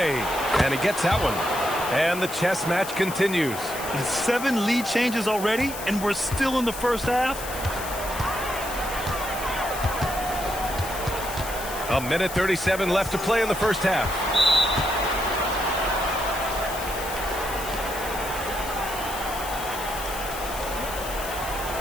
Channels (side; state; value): left; noise; hiss, 10 dB below the sound